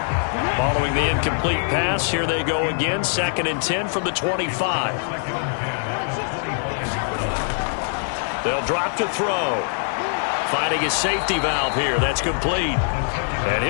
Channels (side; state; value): right; silent; digital silence